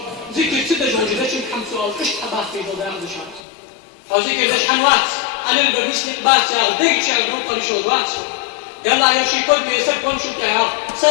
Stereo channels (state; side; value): drops out; right; at 3.4 s